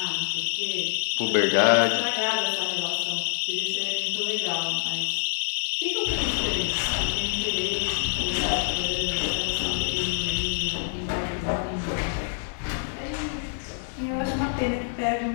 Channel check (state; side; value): silent; right; 60 dB below the other